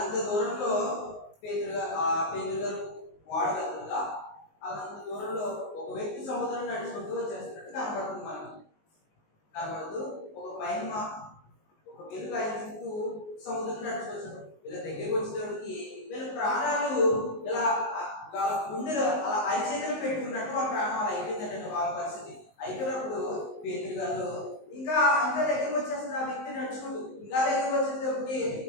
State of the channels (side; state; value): right; late; 19 ms